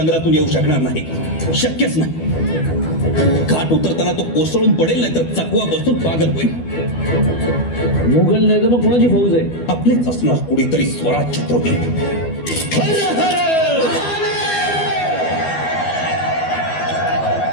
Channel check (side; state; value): right; late; 12 ms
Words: येऊ शकणार नाही. शक्यच नाही. घाट उतरताना तो कोसळून पडेल, नाही तर चकवा बसून पागल होईल. मुघल नाही तर मग कोणाची फौज आहे? आपलेच असणार कुणीतरी स्वराज छत्रपती.